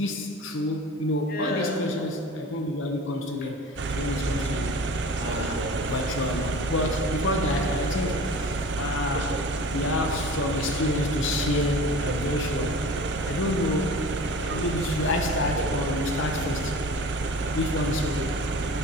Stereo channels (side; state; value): both; normal; correlation 0.40